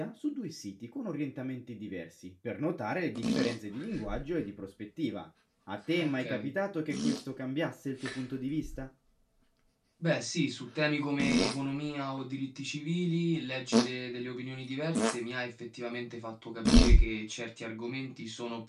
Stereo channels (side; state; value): both; identical; correlation 1.00